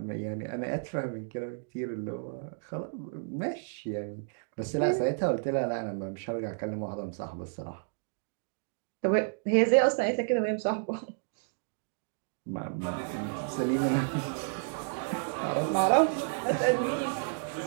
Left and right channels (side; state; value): left; silent; digital silence